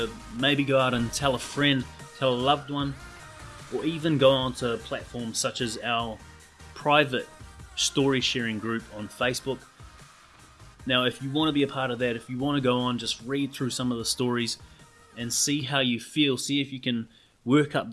maybe go out and tell a friend, tell a loved one, or even go onto platforms such as our private story sharing group on Facebook. Now, if you want to be a part of that, if you want to go on, just read through some of the stories and see how you feel, see if you can work up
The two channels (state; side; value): identical; both; correlation 1.00